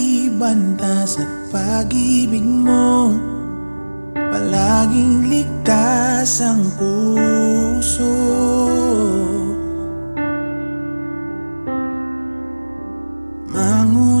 bantas at pag-ibig mo palaging ligtas ang puso.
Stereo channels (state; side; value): inverted; both; correlation -1.00